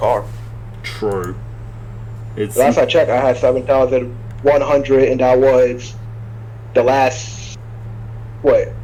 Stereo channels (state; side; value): identical; both; correlation 1.00